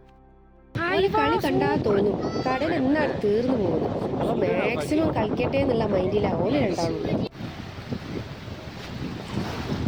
ഈ കളി കണ്ടാ തോന്നും കടൽ എന്നാണ് തീർന്നു പോകുന്നത്. അപ്പൊ മാക്സിമം കളിക്കട്ടെ എന്നുള്ള മൈൻഡിലാ ഓല് രണ്ടാളും.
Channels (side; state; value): both; identical; correlation 1.00